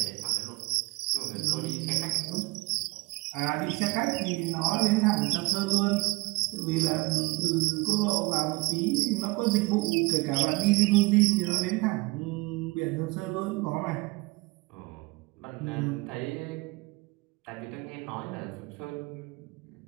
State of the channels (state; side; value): quieter; left; 24.3 dB